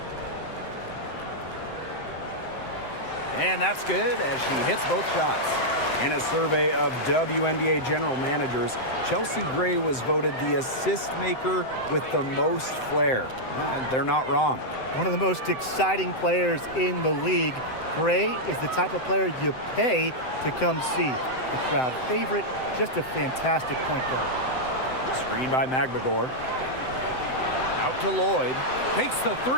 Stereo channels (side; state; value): right; late; 7.8 ms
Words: And that's good as she hits both shots. In a survey of WNBA general managers, Chelsea Gray was voted the assist maker with the most flair. And they're not wrong. One of the most exciting players in the league. Gray is the type of player you pay to come see. A crowd favorite, just a fantastic point guard. Screen by Nbahighlights. Out to Lloyd. Takes the